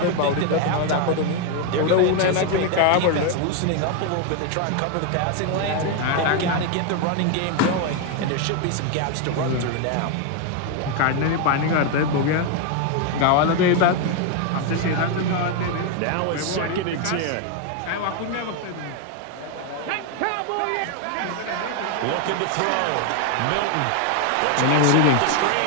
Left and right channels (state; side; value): different; both; correlation 0.01